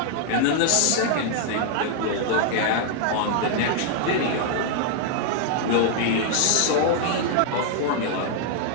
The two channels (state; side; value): different; both; correlation 0.00